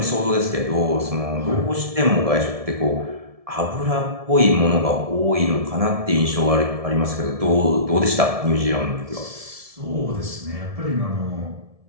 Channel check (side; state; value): left; late; 1.7 ms